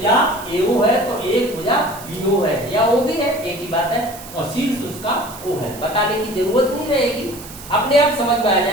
AO है तो एक भुजा BO है या OB है, एक ही बात है, और शीर्ष उसका O है। बताने की जरूरत नहीं रहेगी, अपने आप समझ में आ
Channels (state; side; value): noise; right; hiss, 16 dB below the sound